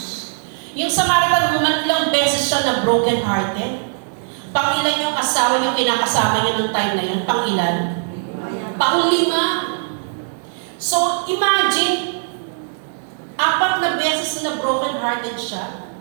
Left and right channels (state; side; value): silent; left; 66 dB below the other